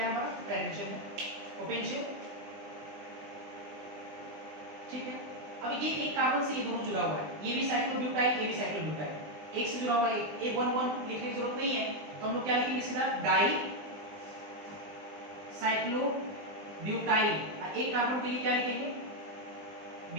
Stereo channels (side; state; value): left; late; 20 ms